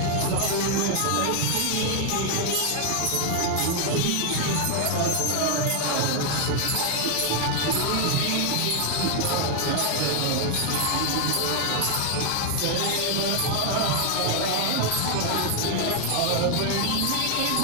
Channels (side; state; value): both; different; correlation 0.00